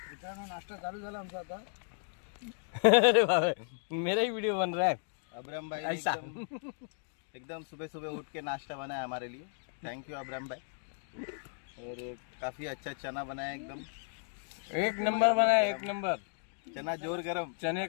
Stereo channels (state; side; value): silent; right; digital silence